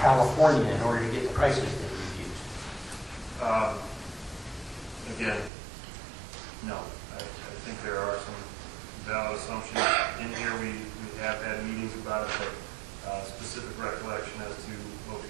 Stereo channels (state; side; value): drops out; left; at 5.5 s